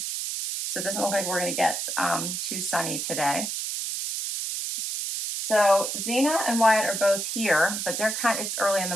So it doesn't look like we're going to get too sunny today. So Zena and Wyatt are both here, but they're it's early in the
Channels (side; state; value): right; noise; hiss, 3 dB below the sound